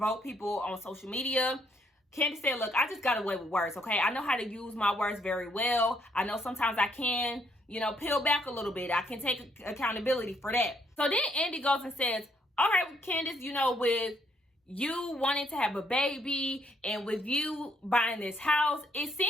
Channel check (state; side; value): normal; both; correlation 0.71